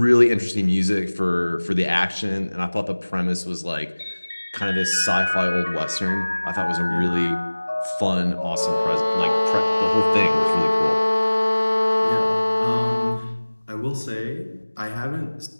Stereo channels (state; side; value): inverted; both; correlation -1.00